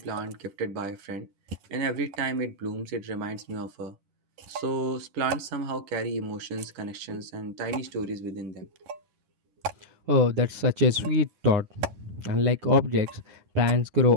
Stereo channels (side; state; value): left; late; 10 ms